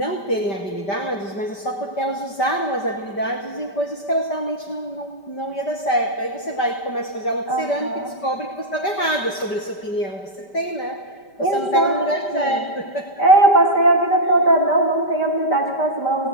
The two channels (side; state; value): right; late; 5.1 ms